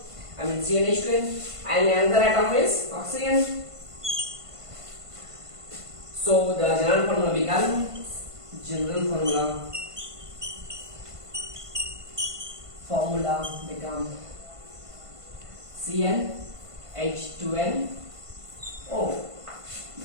I mean CnH2n, and another atom is oxygen. So the general formula becomes formula become CnH2nO.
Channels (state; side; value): late; left; 1.5 ms